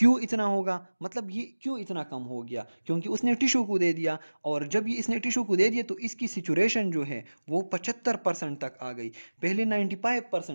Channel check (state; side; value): inverted; both; correlation -1.00